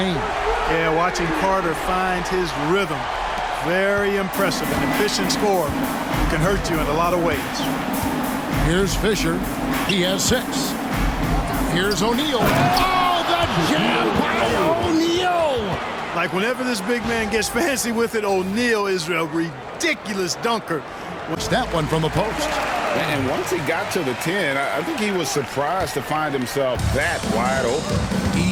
Yeah, watching Carter find his rhythm. Very impressive. An efficient scorer can hurt you in a lot of ways. Here's Fisher. He has 6. Here's O'Neal. Oh, the jam by O'Neal! Like whenever this big man gets fancy with it, O'Neal is a ridiculous dunker. What's that one from the post? And once he got to the 10, I think he was surprised to find himself that wide open.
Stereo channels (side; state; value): both; identical; correlation 1.00